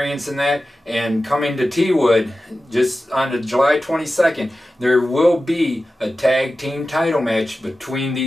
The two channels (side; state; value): both; normal; correlation 0.94